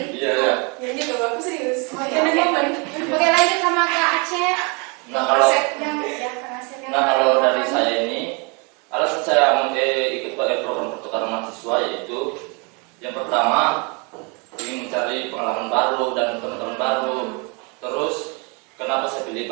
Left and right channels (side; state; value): left; quieter; 32.2 dB